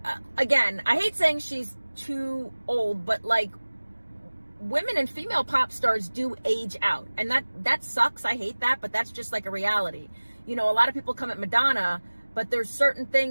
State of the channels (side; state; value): both; inverted; correlation -1.00